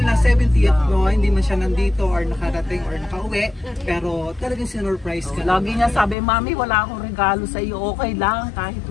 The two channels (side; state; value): right; drops out; at 6.2 s